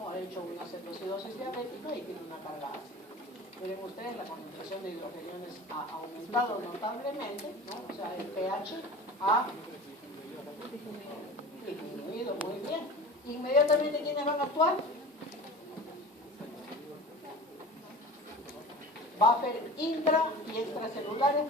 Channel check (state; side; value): normal; both; correlation 0.36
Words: Ha hecho una cetoacidosis diabética y tiene una carga ácida. Miren ustedes, la concentración de hidrogeniones ha aumentado notablemente, ¿no? O sea, el pH ha disminuido muy bien. Inmediatamente, ¿quiénes van a actuar? Buffer intra y extracelulares